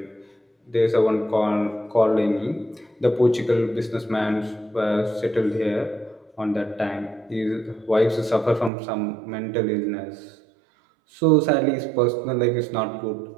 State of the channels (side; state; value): left; drops out; at 8.7 s